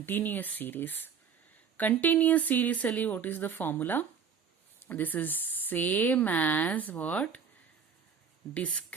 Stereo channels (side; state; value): left; quieter; 6.7 dB